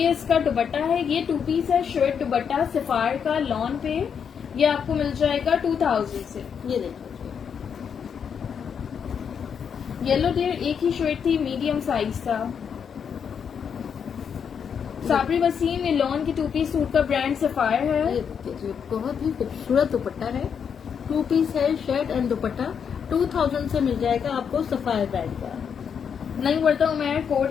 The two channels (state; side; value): quieter; right; 7.2 dB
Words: इसका दुपट्टा है। ये 2 पीस है, शर्ट दुपट्टा सफायर का लॉन पे। ये आपको मिल जाएगा 2000 से। ये देखो, येलो डेयर एक ही शर्ट थी, मीडियम साइज था। साबरी वसीम, ये लॉन की 2 पीस सूट का ब्रांड सफायर है। ये देखिए, बहुत ही खूबसूरत दुपट्टा है। 2 पीस है, शर्ट एंड दुपट्टा। 2000 से मिल जाएगा आपको सफायर ब्रांड का। नहीं वर्दा उमैर, कोड